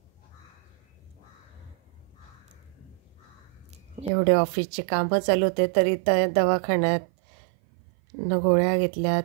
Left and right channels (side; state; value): left; drops out; at 4.1 s